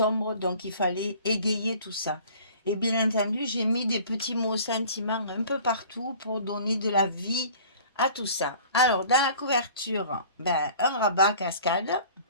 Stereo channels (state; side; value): inverted; both; correlation -0.47